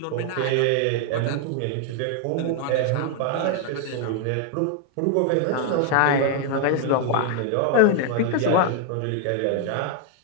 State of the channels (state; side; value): different; both; correlation 0.00